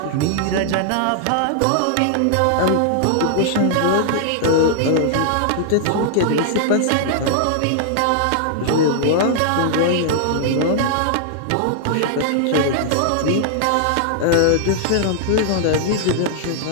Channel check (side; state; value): both; different; correlation -0.01